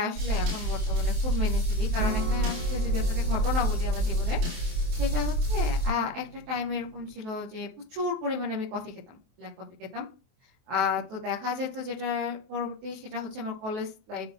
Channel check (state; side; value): late; left; 23 ms